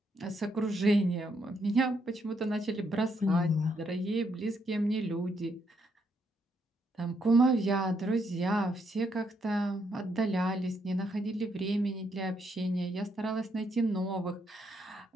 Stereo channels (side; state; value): both; normal; correlation 0.75